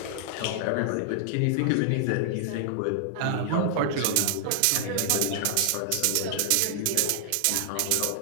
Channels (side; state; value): both; different; correlation 0.00